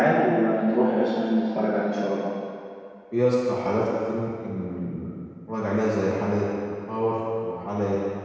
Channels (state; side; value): identical; both; correlation 1.00